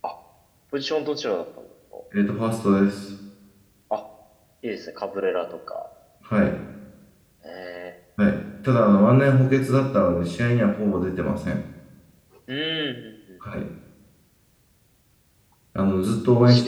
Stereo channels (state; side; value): identical; both; correlation 1.00